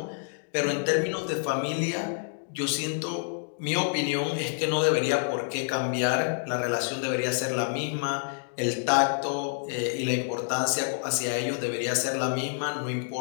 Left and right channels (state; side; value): silent; right; digital silence